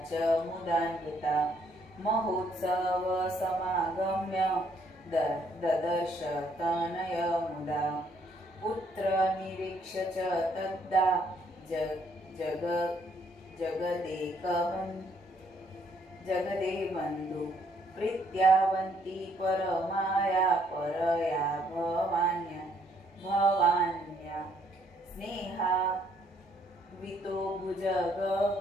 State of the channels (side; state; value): both; normal; correlation 0.68